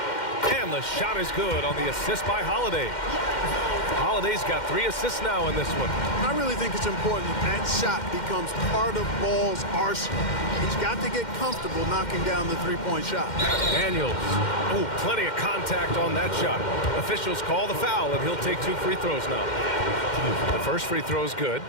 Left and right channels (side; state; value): right; late; 2.1 ms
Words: And the shot is good on the assist by Holiday. Holiday's got 3 assists now in this one. I really think it's important that shot becomes part of Ball's arsenal. He's got to get comfortable knocking down the three-point shot. Daniels. Oh, plenty of contact on that shot. Officials call the foul, and he'll take 2 free throws now. The first free throw is good.